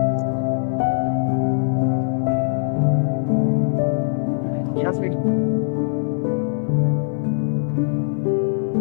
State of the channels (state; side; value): silent; right; 59 dB below the other